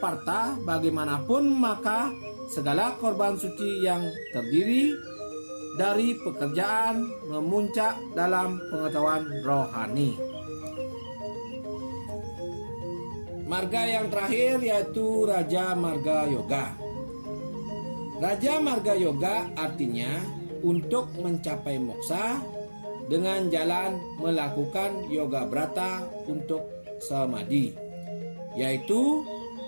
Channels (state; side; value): inverted; both; correlation -1.00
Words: Parta, bagaimanapun maka segala korban suci yang terdiri dari pekerjaan memuncak dalam pengetahuan rohani. Marga yang terakhir yaitu Raja Marga Yoga. Raja Marga Yoga artinya untuk mencapai moksa dengan jalan melakukan yoga brata untuk samadhi, yaitu